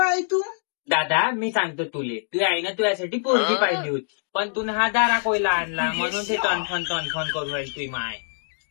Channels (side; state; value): right; silent; 62 dB below the other